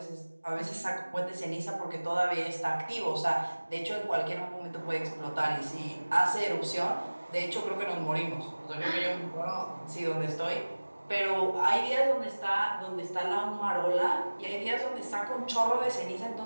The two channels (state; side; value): inverted; both; correlation -1.00